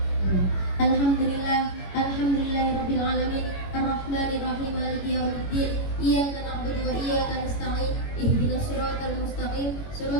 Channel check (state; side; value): late; right; 21 ms